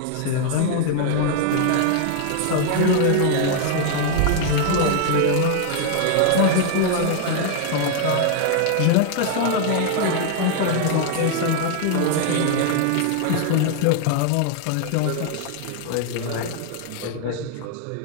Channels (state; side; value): different; both; correlation 0.00